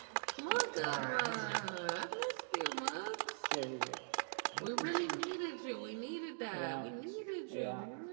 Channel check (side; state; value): left; silent; digital silence